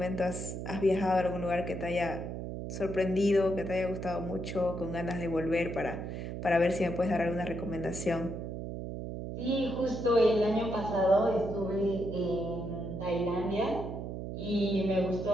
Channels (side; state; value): right; noise; hum, 6 dB below the sound